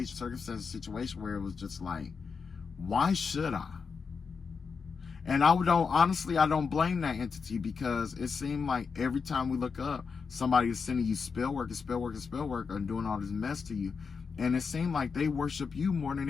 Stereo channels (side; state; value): right; quieter; 5.4 dB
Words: where it was just like, why should I? And I don't blame that entity, because it seemed like every time we look up, somebody is sending you spellwork and doing all this mess to you. And it seemed like they worship you more than